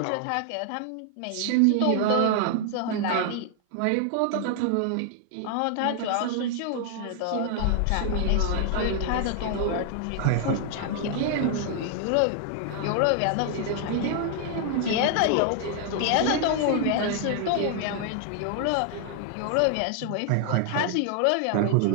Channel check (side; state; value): both; different; correlation 0.00